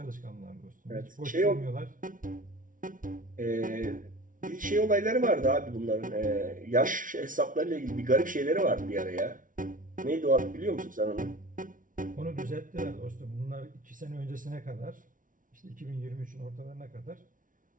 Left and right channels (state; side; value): late; left; 0.38 ms